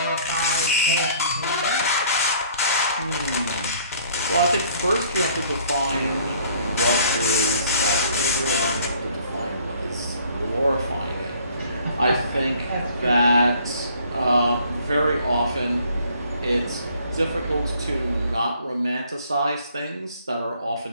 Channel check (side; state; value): both; inverted; correlation -0.58